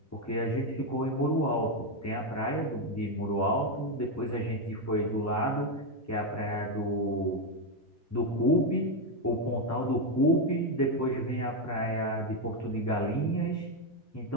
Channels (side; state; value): both; normal; correlation 0.06